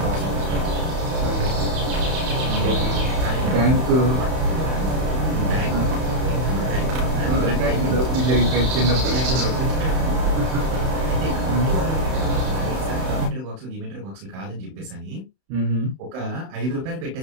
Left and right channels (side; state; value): left; late; 31 ms